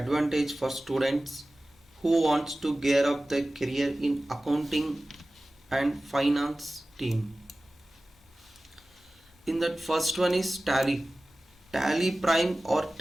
for students who wants to gear up their career in accounting and finance team. In that first one is Tally. Tally Prime or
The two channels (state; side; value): normal; both; correlation 0.97